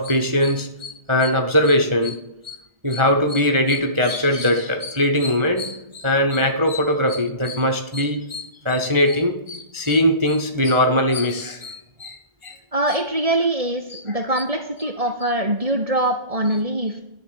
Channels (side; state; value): left; late; 1.4 ms